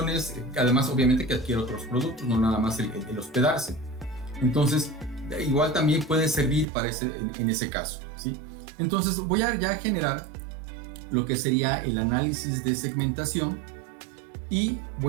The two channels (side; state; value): left; drops out; at 6.7 s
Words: además, obviamente, que adquiere otros productos, no nada más el hospedarse. Entonces, igual también puede servir para en ese caso, ¿sí? Entonces, voy a ya generar lo que sería el análisis de segmentación y